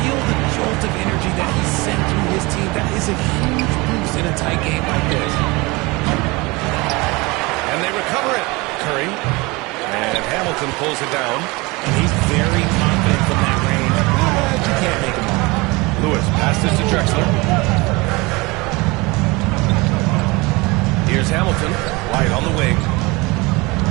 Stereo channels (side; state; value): left; quieter; 24.3 dB